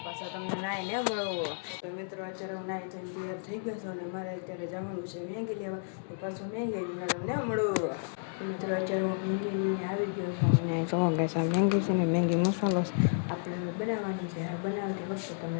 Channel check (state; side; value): silent; right; digital silence